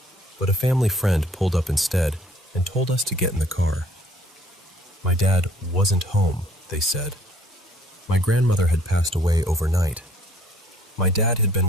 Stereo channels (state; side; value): normal; both; correlation 0.59